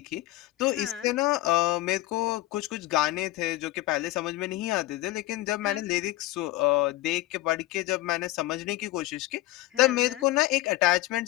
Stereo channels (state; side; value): quieter; right; 17.3 dB